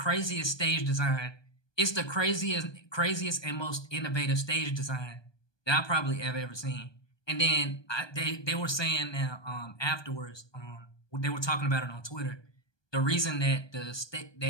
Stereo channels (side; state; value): right; late; 1.2 ms